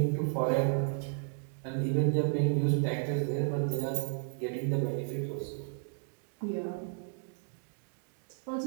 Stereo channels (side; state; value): left; silent; 56 dB below the other